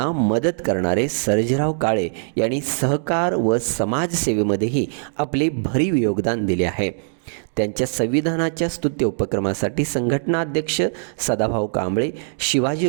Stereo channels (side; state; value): left; silent; digital silence